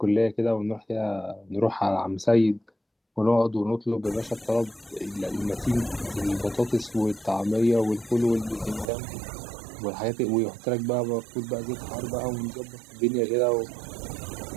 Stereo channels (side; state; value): left; drops out; at 8.9 s